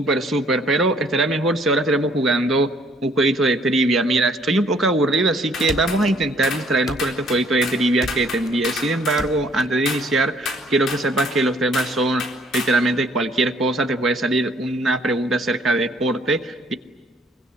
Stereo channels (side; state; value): both; normal; correlation 0.62